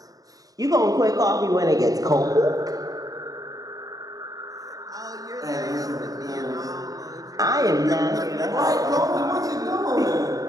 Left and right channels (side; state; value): left; late; 0.18 ms